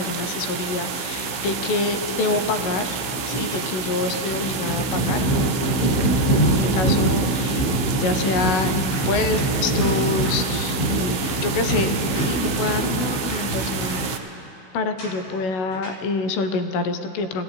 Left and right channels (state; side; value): late; right; 15 ms